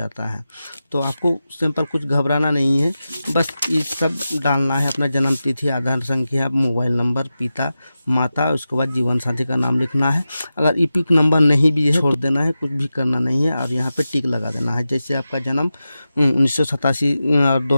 है, तो आपको सिंपल कुछ घबराना नहीं है। बस ये सब डालना है, अपना जन्म तिथि, आधार संख्या, मोबाइल नंबर, पिता माता, उसके बाद जीवन साथी का नाम लिखना है। अगर ईपिक नंबर नहीं भी है, छोड़ देना है, कुछ भी करना नहीं है। और यहाँ पे टिक लगा देना है। जैसे आपका जन्म 1987 और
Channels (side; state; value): both; inverted; correlation -0.93